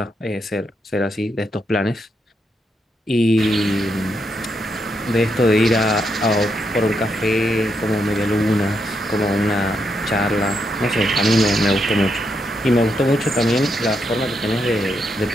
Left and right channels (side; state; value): both; normal; correlation 0.80